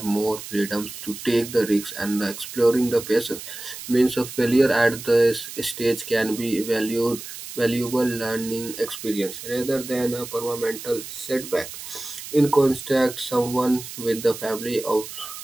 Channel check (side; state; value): right; noise; hiss, 11 dB below the sound